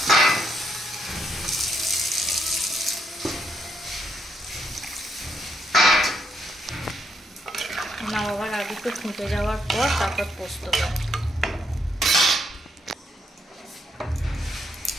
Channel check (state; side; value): normal; both; correlation 0.76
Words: নামাবার আগে একটু ফুটে যাওয়ার পর তারপর পোস্ত